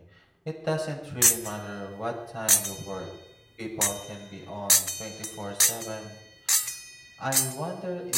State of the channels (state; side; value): identical; both; correlation 1.00